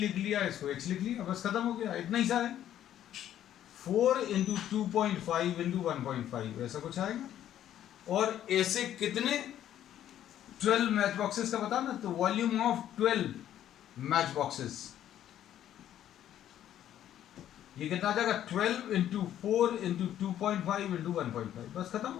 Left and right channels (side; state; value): right; quieter; 11.4 dB